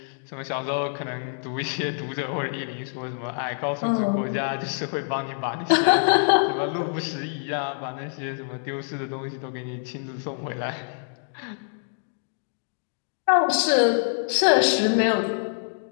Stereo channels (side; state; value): right; silent; digital silence